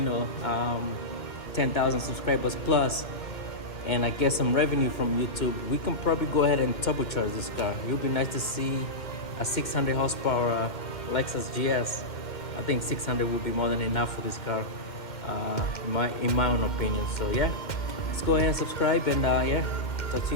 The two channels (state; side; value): late; right; 2.1 ms